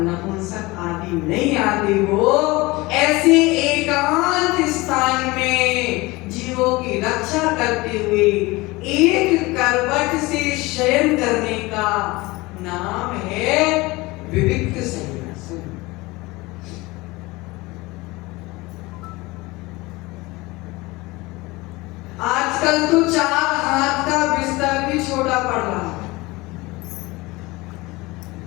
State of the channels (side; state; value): right; quieter; 22.1 dB